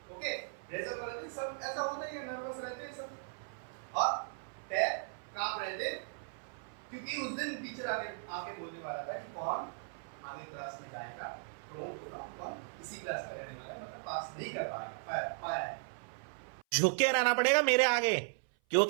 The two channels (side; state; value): left; silent; 53 dB below the other